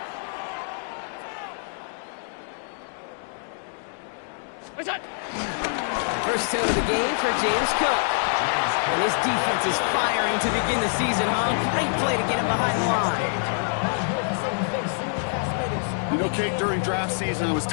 What's that? First toe of the game for James Cook. And his defense is firing to begin the season, huh? Great play to get him behind the line. You know, Kate, during draft season, I was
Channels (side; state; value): right; silent; 61 dB below the other